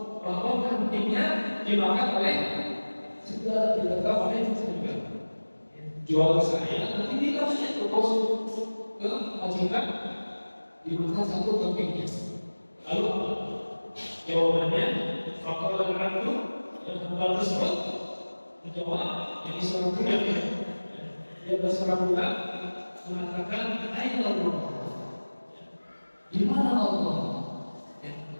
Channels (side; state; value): both; inverted; correlation -1.00